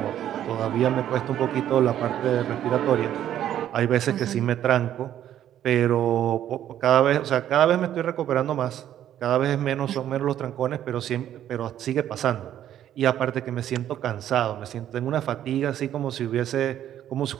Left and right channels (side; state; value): left; quieter; 11.2 dB